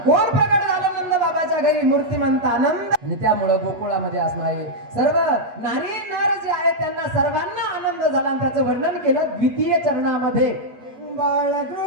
कोण प्रगट झालं नंद बाबाच्या घरी? मूर्तिमंत आनंद. आणि त्यामुळे गोकुळामध्ये असणारे सर्व नारी नार जे आहेत त्यांना सर्वांना आनंद झाला. आणि त्याचं वर्णन केलं द्वितीय चरणामध्ये.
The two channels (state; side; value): late; left; 8.3 ms